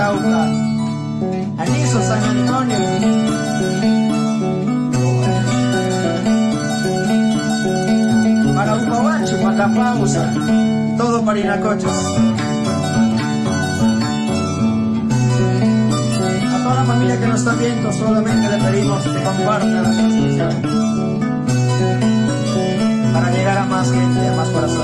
Aniso, San Antonio, para Upabacho, Macapausa, todo Parinacochas. A toda la familia que nos está viendo, solamente le pedimos que compartan la transmisión para llegar a más gente, a más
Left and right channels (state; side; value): identical; both; correlation 1.00